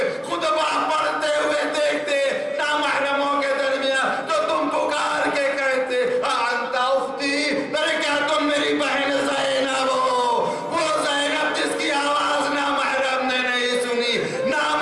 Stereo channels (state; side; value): identical; both; correlation 1.00